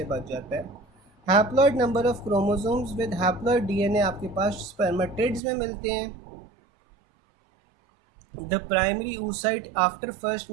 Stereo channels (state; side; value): drops out; left; at 5.4 s